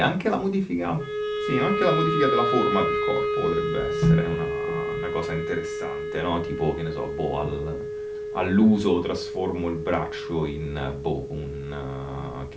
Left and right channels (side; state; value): both; identical; correlation 1.00